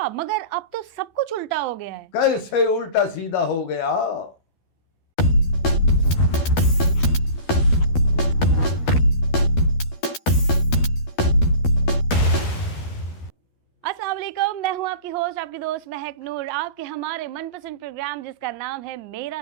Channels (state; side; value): late; right; 12 ms